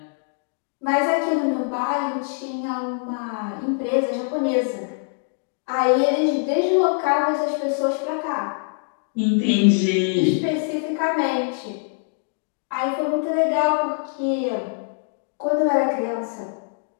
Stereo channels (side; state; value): right; silent; digital silence